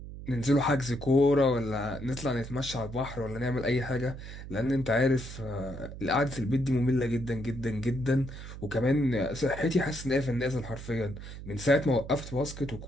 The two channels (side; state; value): right; noise; hum, 11 dB below the sound